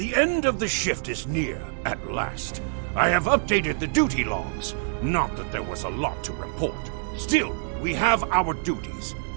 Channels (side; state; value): left; silent; 61 dB below the other